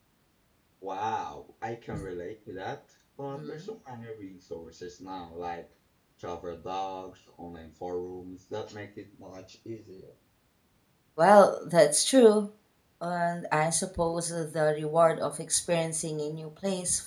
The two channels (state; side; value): identical; both; correlation 1.00